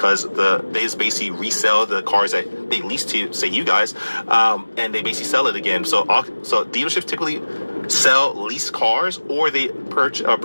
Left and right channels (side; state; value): both; inverted; correlation -1.00